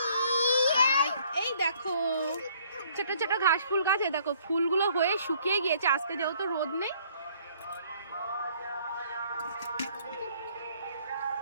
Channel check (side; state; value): both; inverted; correlation -0.62